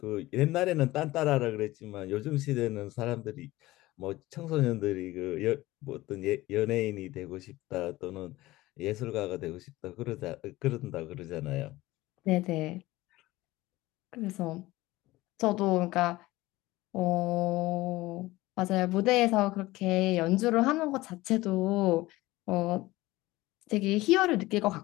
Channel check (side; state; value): right; quieter; 18.6 dB